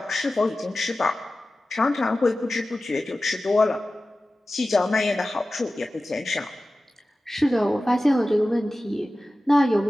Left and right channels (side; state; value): both; normal; correlation 0.95